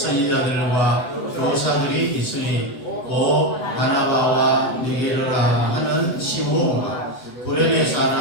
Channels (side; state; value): right; late; 7.8 ms